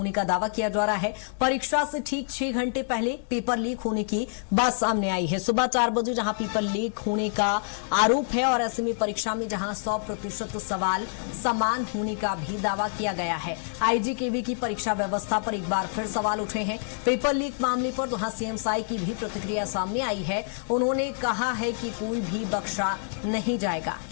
का दावा किया जा रहा है। परीक्षा से ठीक 6 घंटे पहले पेपर लीक होने की बात सामने आई है। सुबह 4 बजे जहां पेपर लीक होने का आरोप है और ऐसे में परीक्षा में जहां 100% सवाल समान होने का भी दावा किया गया है। आईजी केवी की परीक्षा व्यवस्था पर एक बार फिर सवाल उठे हैं। पेपर लीक मामले पर जहां सीएम साई की भी प्रतिक्रिया सामने आई है। उन्होंने कहा है कि कोई भी बख्शा नहीं जाएगा।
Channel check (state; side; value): silent; right; digital silence